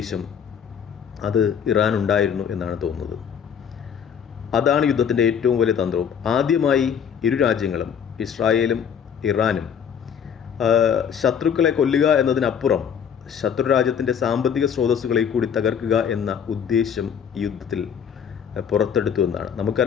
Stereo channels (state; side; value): quieter; right; 7.7 dB